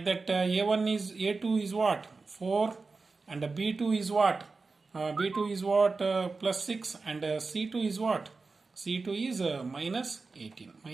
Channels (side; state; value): left; quieter; 4.0 dB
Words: that, a2 is what? 4, and b2 is what? B2 is what? Plus 6, and c2 is what? c2 is minus 18.